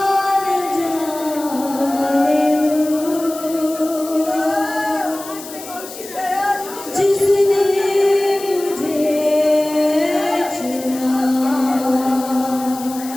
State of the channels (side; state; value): left; noise; hiss, 14 dB below the sound